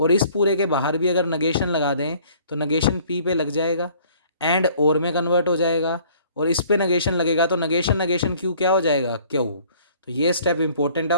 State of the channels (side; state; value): both; inverted; correlation -0.55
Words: इस पूरे के बाहर भी अगर नगेशन लगा दें तो नगेशन पी पे लग जाएगा एंड और में कन्वर्ट हो जाएगा, और इस पे नगेशन लगेगा तो नगेशन नगेशन क्यू क्या हो जाएगा क्यू। तो ये स्टेप इंपॉर्टेंट है,